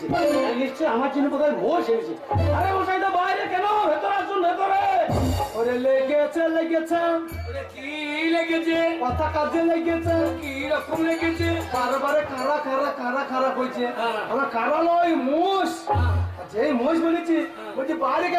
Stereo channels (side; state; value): both; identical; correlation 1.00